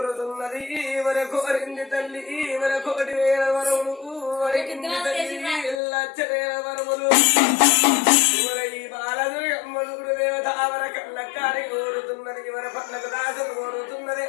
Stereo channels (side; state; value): right; drops out; at 5.8 s